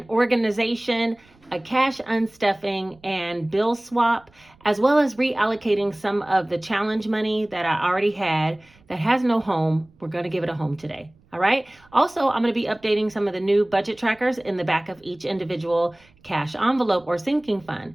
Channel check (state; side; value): noise; right; rumble, 30 dB below the sound